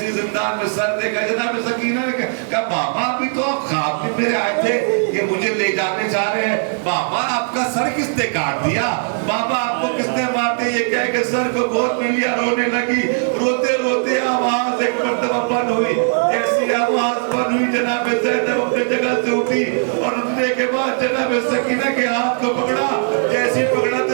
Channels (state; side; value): silent; left; digital silence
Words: زندان میں سر دیکھا جناب سکینہ نے کہا بابا ابھی تو آپ خواب میں میرے آئے تھے کہ مجھے لے جانے چاہ رہے ہیں. بابا آپ کا سر کس نے کاٹ دیا؟ بابا آپ کو کس نے مارتے؟ یہ کہہ کہ سر کو گود میں لیا. رونے لگی. روتے روتے آواز ایک مرتبہ بند ہوئی. ایسی آواز بند ہوئی جناب زینب اپنے جگہ سے اٹھی اور اٹھنے کے بعد جناب سکینہ کے ہاتھ کو پکڑا. جیسی پکڑا تو